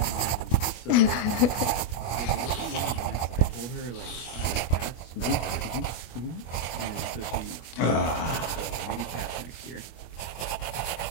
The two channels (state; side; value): late; right; 25 ms